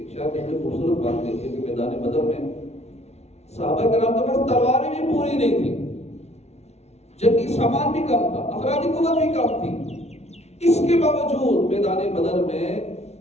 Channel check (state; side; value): late; right; 0.31 ms